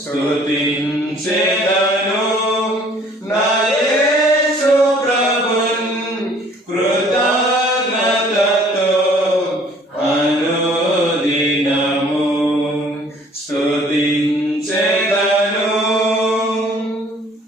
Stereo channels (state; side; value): normal; both; correlation 0.56